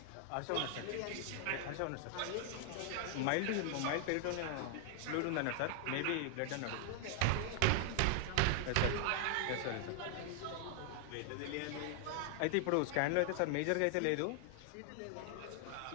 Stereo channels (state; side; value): different; both; correlation 0.00